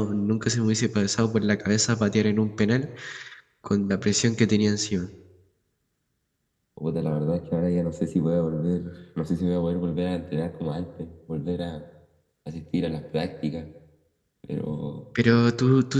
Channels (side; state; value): both; identical; correlation 1.00